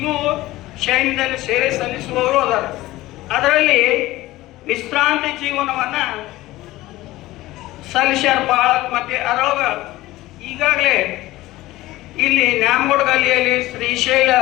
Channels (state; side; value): quieter; right; 17.5 dB